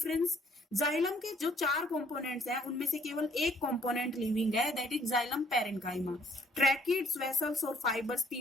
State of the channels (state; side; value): normal; both; correlation 0.63